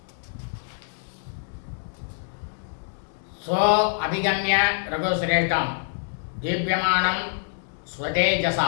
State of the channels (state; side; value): silent; right; 61 dB below the other